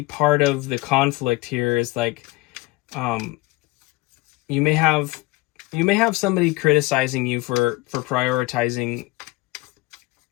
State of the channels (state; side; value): quieter; right; 22.0 dB